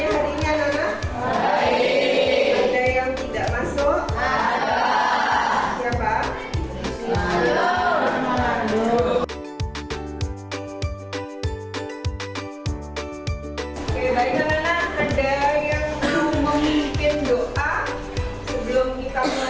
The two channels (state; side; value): identical; both; correlation 1.00